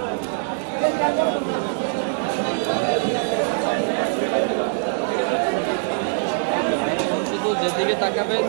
শুধু যেদিকে তাকাবেন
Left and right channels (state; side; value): silent; left; digital silence